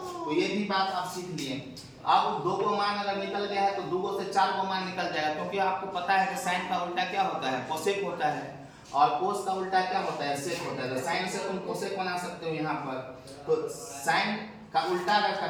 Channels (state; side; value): identical; both; correlation 1.00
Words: ये भी बात आप सीख लिए। अब 2 को मान अगर निकल गया है तो 2 से 4 को मान निकल जाएगा, क्योंकि आपको पता है कि साइन का उल्टा क्या होता है, कोसेक होता है, और cos का उल्टा क्या होता है, सेक होता है। तो साइन से तुम कोसेक बना सकते हो यहाँ पर। तो साइन का उल्टा अगर